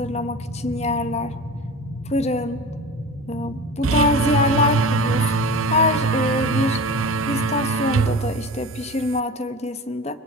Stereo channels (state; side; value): normal; both; correlation 0.32